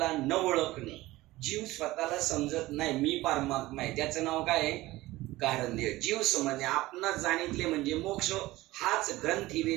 न ओळखणे. जीव स्वतःला समजत नाही, मी परमात्मा आहे, त्याचं नाव काय आहे कारण देह. जीव समजणे, आपणास जाणितले म्हणजे मोक्ष. हाच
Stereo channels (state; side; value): quieter; left; 18.2 dB